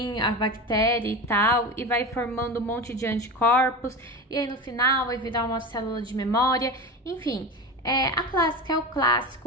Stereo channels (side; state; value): both; normal; correlation 0.27